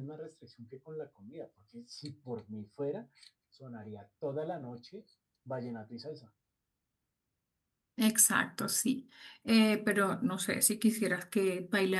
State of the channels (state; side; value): identical; both; correlation 1.00